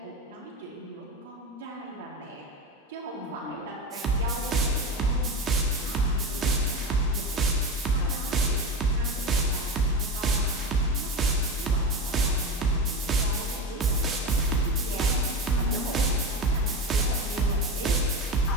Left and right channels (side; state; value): both; normal; correlation 0.23